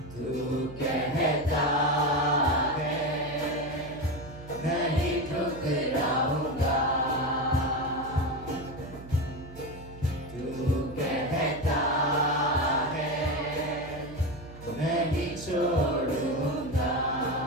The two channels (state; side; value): noise; right; hum, 16 dB below the sound